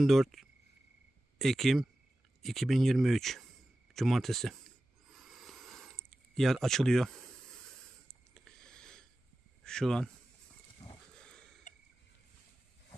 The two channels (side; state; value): both; normal; correlation 0.94